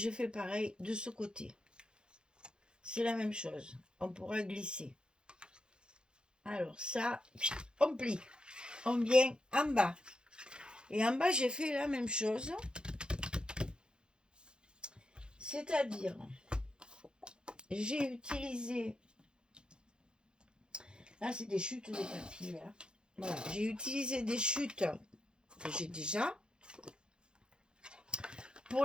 fais pareil de ce côté. C'est la même chose. On pourra glisser. Alors ça, on plie. On vient en bas. Et en bas, j'ai fait la même chose. C'est-à-dire, j'ai utilisé... Là, c'est des chutes de papier. Là. Voilà, j'ai utilisé des chutes que j'ai déjà pour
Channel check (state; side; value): late; left; 0.049 ms